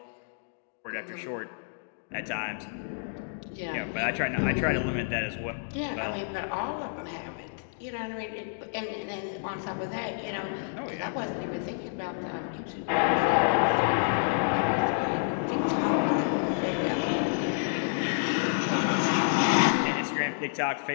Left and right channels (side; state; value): right; silent; digital silence